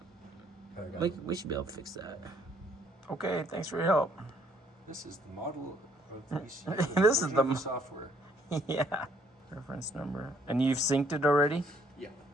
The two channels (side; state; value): both; normal; correlation 0.65